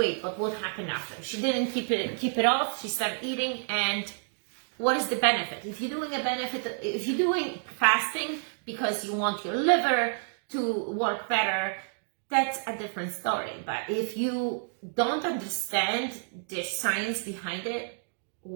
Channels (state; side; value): silent; left; digital silence